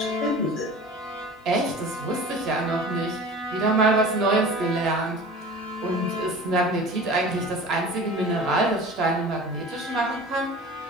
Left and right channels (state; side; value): normal; both; correlation 0.39